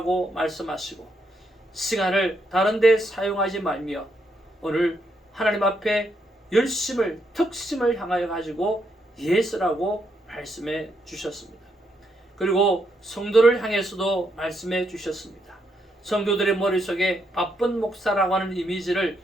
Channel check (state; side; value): normal; both; correlation 0.78